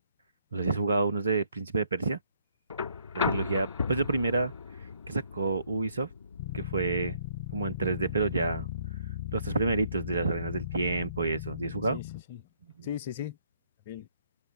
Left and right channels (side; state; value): both; inverted; correlation -0.67